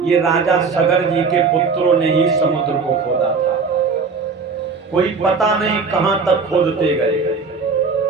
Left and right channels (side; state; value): left; quieter; 4.8 dB